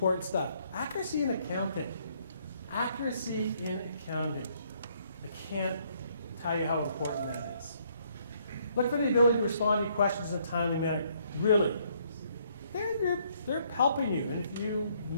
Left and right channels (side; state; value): both; inverted; correlation -0.68